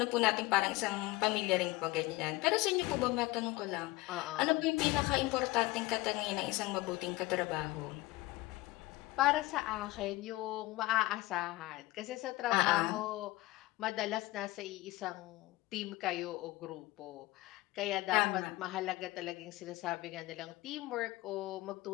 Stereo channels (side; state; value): right; quieter; 19.9 dB